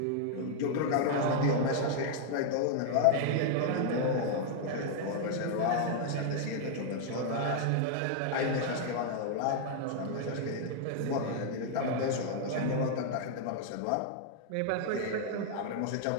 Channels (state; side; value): different; both; correlation 0.00